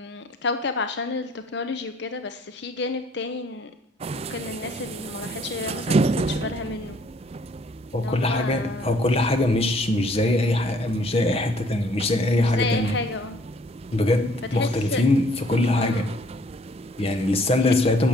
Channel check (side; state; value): both; normal; correlation 0.61